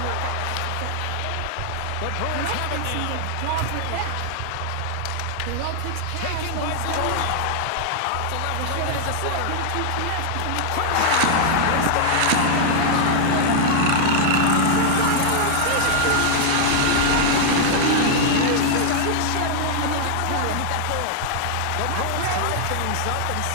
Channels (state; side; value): different; both; correlation -0.01